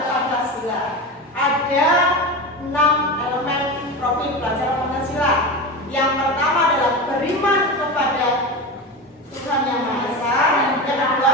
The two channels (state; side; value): normal; both; correlation 0.24